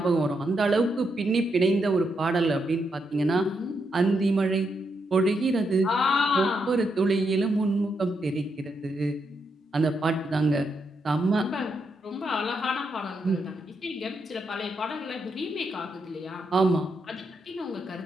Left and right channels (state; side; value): normal; both; correlation 0.81